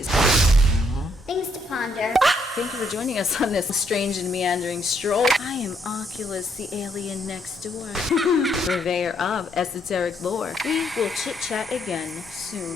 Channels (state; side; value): normal; both; correlation 0.72